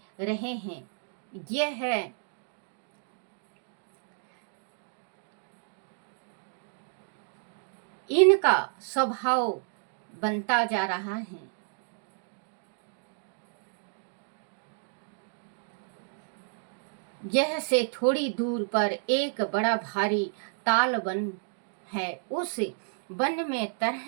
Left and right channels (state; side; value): silent; left; digital silence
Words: रहे हैं। यह है इनका स्वभाव बनता जा रहा है। यह से थोड़ी दूर पर एक बड़ा भारी ताल वन है। उस वन में